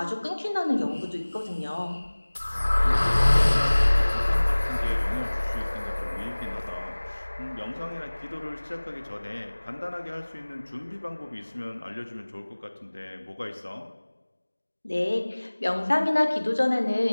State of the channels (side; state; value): both; inverted; correlation -1.00